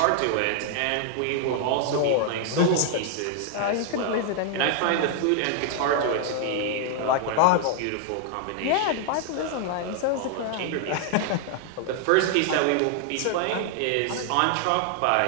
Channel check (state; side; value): different; both; correlation 0.00